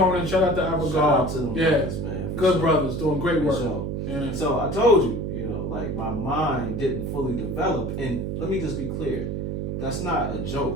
Shout out to Abigail. Shout out to them brothers, man. Good brothers doing great work. Sure. Yeah. So I told you, like my mind didn't fully develop. And let me just be clear, that's not a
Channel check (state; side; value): noise; right; hum, 3 dB below the sound